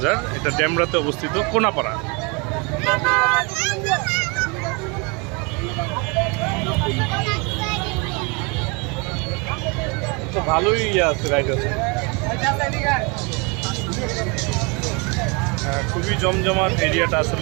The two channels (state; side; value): quieter; left; 30.5 dB